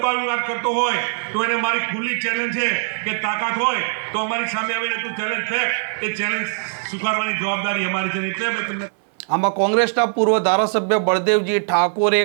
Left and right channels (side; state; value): left; silent; 65 dB below the other